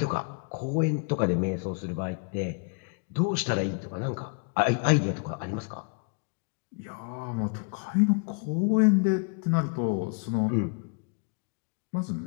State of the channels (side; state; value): right; quieter; 37.8 dB